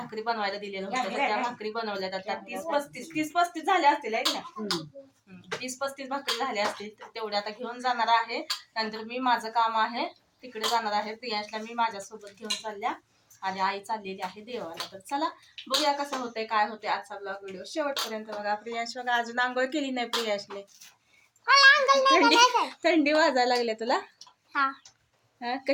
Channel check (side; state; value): both; identical; correlation 1.00